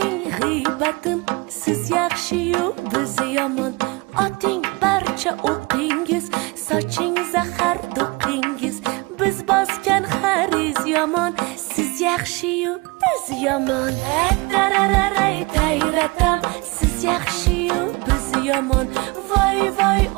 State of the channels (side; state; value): left; quieter; 25.9 dB